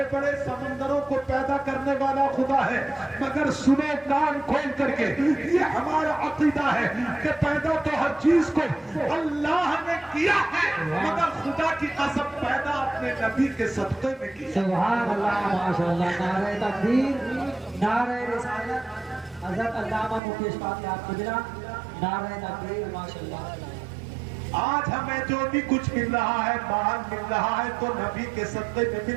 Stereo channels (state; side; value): drops out; left; at 20.2 s